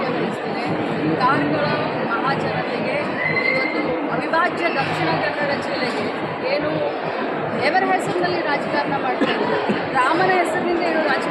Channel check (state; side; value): identical; both; correlation 1.00